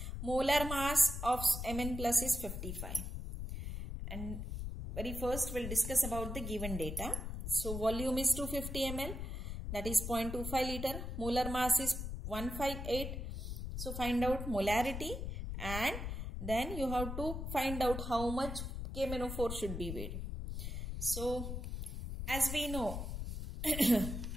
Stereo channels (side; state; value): left; noise; rumble, 5 dB below the sound